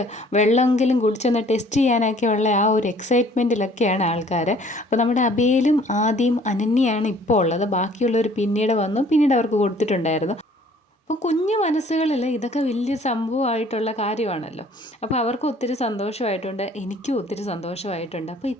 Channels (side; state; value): both; normal; correlation 0.56